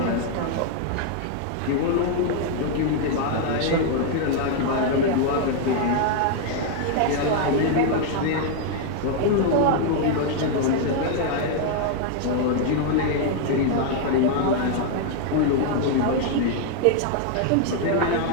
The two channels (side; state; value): both; different; correlation 0.00